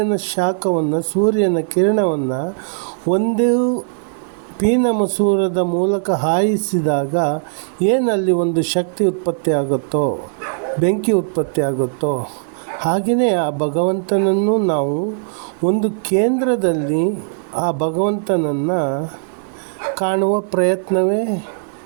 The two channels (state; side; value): silent; left; digital silence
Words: ಶಾಖವನ್ನು, ಸೂರ್ಯನ ಕಿರಣವನ್ನು ಒಂದು ಪೀನ ಮಸೂರದ ಮೂಲಕ ಹಾಯಿಸಿದಾಗ ಏನಲ್ಲಿ ಒಂದು ಶಕ್ತಿ ಉತ್ಪತ್ತಿ ಆಗುತ್ತೋ, ಬೆಂಕಿ ಉತ್ಪತ್ತಿ ಆಗುತ್ತೋ, ಹಾಗೆಯೇ ಆ ಭಗವಂತನನ್ನು ನಾವು ಒಂದು ಕೇಂದ್ರದಲ್ಲಿ ಆ ಭಗವಂತನನ್ನು ಕಾಣುವ ಪ್ರಯತ್ನವೇ